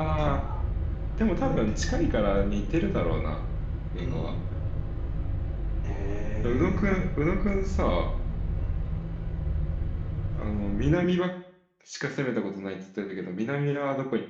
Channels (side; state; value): both; identical; correlation 1.00